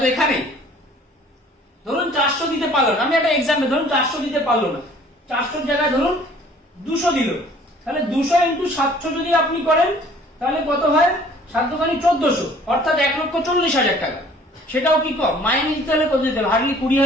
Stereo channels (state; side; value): normal; both; correlation 0.54